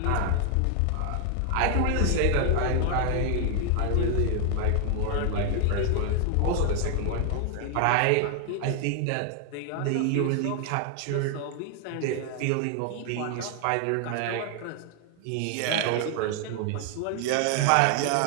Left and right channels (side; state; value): both; different; correlation 0.00